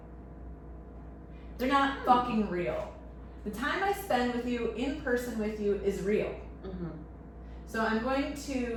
They're not fucking real. The time I spend with you, in person with you, is real. Mhm. So I'm going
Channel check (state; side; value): identical; both; correlation 1.00